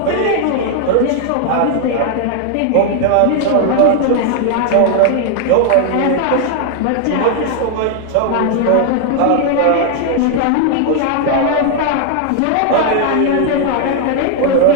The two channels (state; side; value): different; both; correlation 0.00